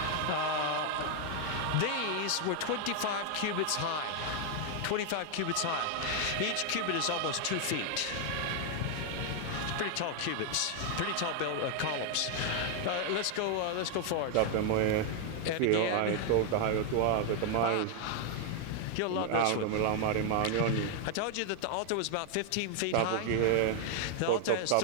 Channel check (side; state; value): both; different; correlation 0.00